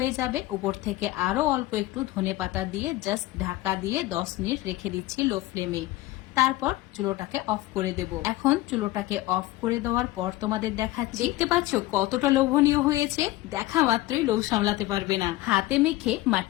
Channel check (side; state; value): right; quieter; 17.5 dB